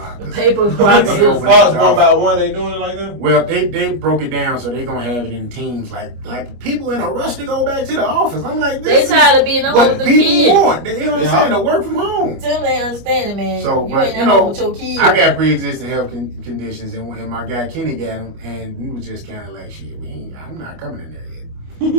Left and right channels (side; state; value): left; late; 25 ms